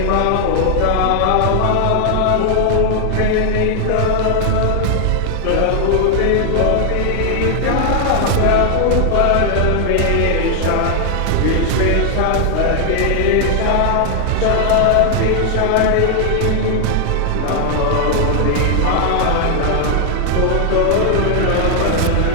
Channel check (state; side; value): different; both; correlation 0.00